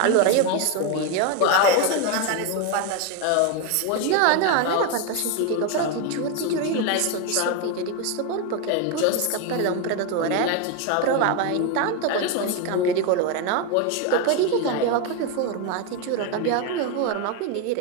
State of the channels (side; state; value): both; different; correlation 0.02